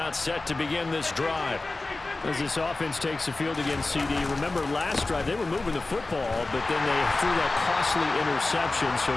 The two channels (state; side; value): quieter; right; 3.2 dB